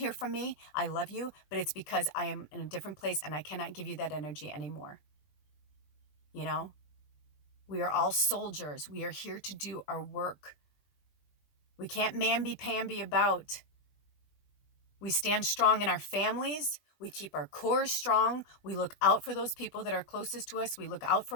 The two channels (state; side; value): late; right; 20 ms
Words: from me, I love you, but it's because I am in a different place and I cannot give you that energy anymore. We are all soldiers. We are here to do our work. We can't mamby-pamby about. We stand strong in our families. We keep our core strong. We look out for those people that are closest to us. We look out